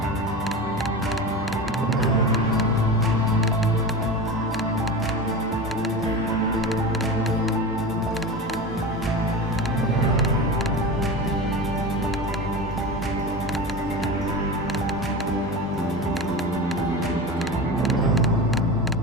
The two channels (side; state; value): both; normal; correlation 0.27